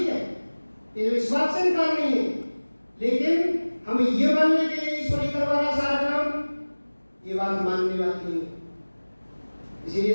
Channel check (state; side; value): inverted; both; correlation -1.00